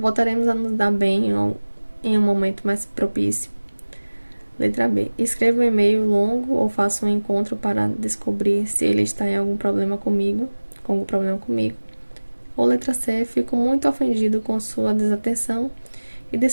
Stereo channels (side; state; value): both; inverted; correlation -1.00